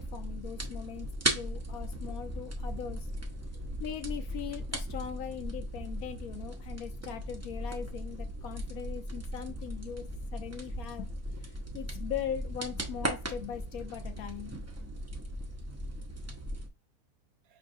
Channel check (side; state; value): both; normal; correlation 0.41